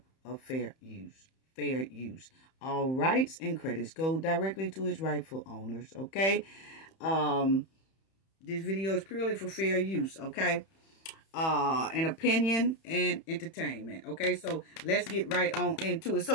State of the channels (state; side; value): late; right; 31 ms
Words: of fair use. All rights and credits go directly to its rightful owners, okay? This video is purely for fair use, okay? And opinion and entertainment, okay? So let's get right on into it.